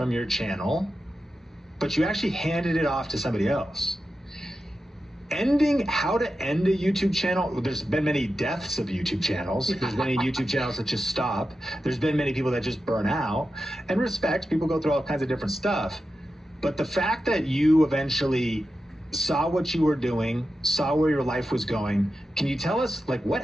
your channel, but you actually handed it off to somebody else. How to end a YouTube channel, there's been many deaths of YouTube channels. There's many YouTube channels that just stop. There's been many people that just burn out. And respect, people go through all kinds of different stuff. But the fact that you eventually saw what you were doing, saw where your life was going, can you tell us like what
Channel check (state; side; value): normal; both; correlation 0.91